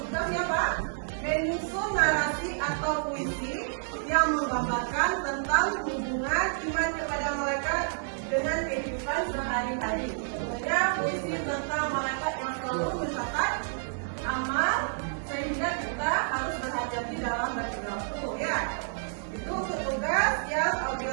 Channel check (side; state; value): left; silent; 56 dB below the other